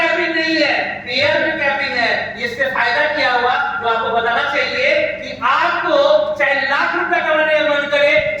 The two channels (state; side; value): identical; both; correlation 1.00